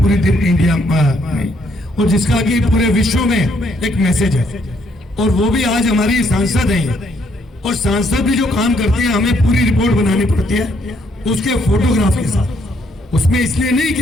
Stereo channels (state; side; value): normal; both; correlation 0.70